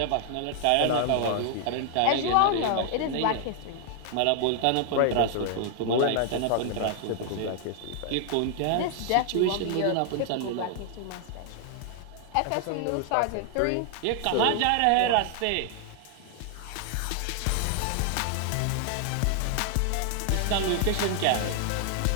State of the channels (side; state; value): both; different; correlation 0.00